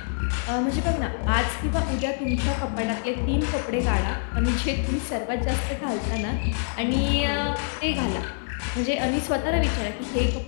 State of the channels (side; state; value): right; silent; 61 dB below the other